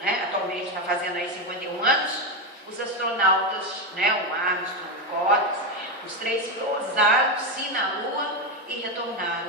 né, atualmente está fazendo aí 51 anos, os astronautas, né, o Armstrong, o Collins, os 3 pousaram-se na Lua e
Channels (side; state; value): both; normal; correlation 0.10